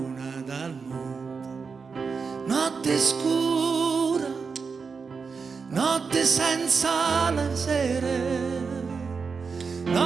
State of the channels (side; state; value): left; quieter; 5.2 dB